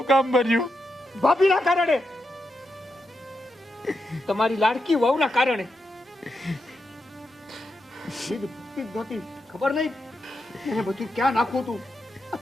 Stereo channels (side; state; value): both; normal; correlation 0.85